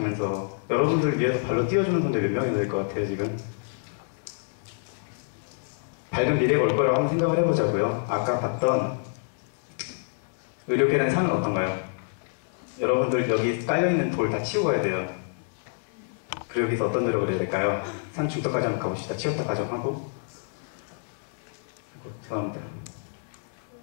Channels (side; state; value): right; silent; digital silence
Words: 여러분들 위해서 발로 띄워주는 선배 몇 명이나 될 것 같아요 지금? 밝은 미래가 올 거라고 한번 생각을 해보자고요. 아까 봤던 의료계란 산은 어떤가요? 여러분들 여기 깔려있는 돌 다 치우고 가야 돼요. 그리고 여기서 어떤 노력을 해야 될까요? 산 중턱까지 한번 가봅시다. 치웠다 가정하고. 죄송합니다.